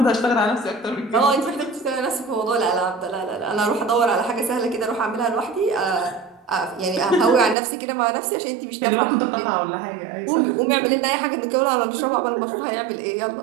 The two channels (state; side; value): drops out; left; at 7.6 s